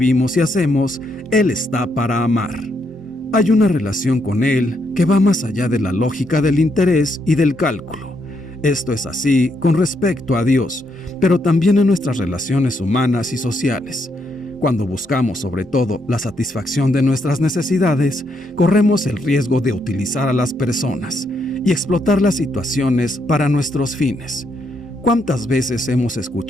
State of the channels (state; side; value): normal; both; correlation 0.77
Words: y hacemos, Él está para amar. Hay una relación con Él que va más allá de la lógica del interés y del cálculo. Esto es así con respecto a Dios, pero también en nuestras relaciones humanas y sociales. Cuando buscamos sobre todo la satisfacción de nuestras necesidades, corremos el riesgo de utilizar a las personas y explotar las situaciones para nuestros fines. ¿Cuántas veces hemos